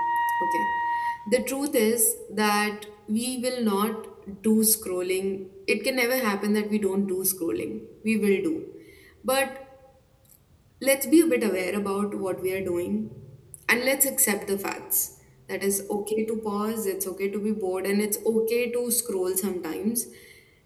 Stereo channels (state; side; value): identical; both; correlation 1.00